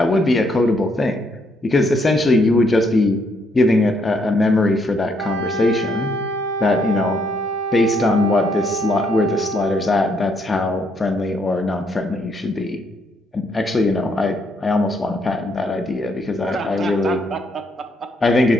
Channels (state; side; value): normal; both; correlation 0.72